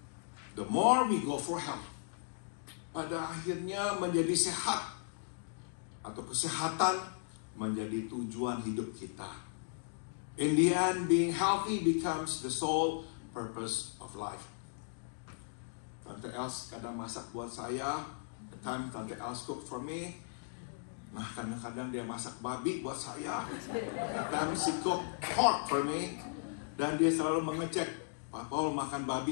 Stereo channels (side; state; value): right; silent; digital silence